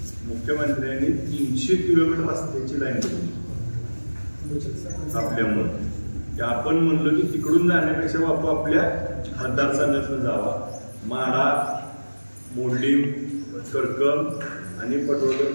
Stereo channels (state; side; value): inverted; both; correlation -1.00